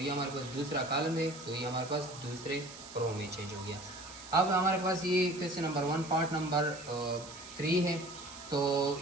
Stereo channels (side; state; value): right; noise; hiss, 15 dB below the sound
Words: ये हमारे पास दूसरा कॉलम है तो ये हमारे पास दूसरे रो में चेंज हो गया। अब हमारे पास ये क्वेश्चन नंबर 1 पार्ट नंबर 3 है। तो